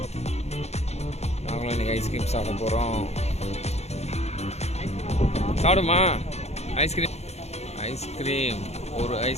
நாங்களும் இன்னைக்கு ஐஸ்கிரீம் சாப்பிட போகிறோம். சாப்பிடுமா ஐஸ்கிரீம்? ஐஸ்கிரீம் ஒரு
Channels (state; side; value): late; right; 0.31 ms